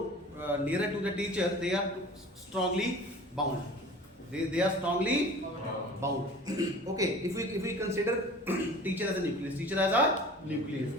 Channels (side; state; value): both; normal; correlation 0.42